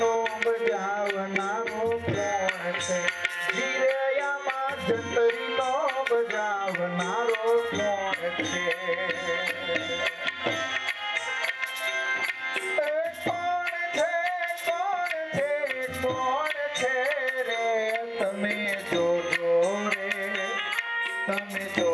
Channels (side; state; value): both; identical; correlation 1.00